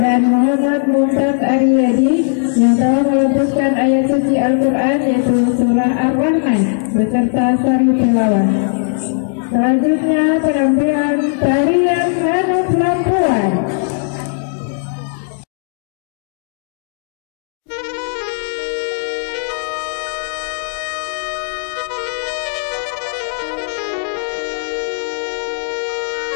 pembacaan Muhammad Mumtaz Aryadi yang telah melepaskan ayat suci Al-Quran yaitu surah Ar-Rahman beserta sari tilawah. Selanjutnya penampilan tarian Hanuf Lampuan.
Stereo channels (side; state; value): right; silent; digital silence